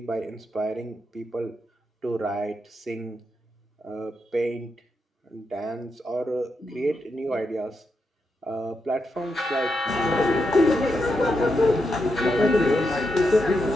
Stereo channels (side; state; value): both; normal; correlation 0.84